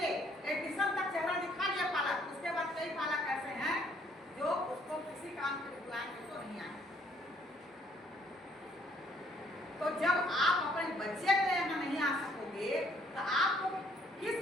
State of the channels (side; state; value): both; normal; correlation 0.64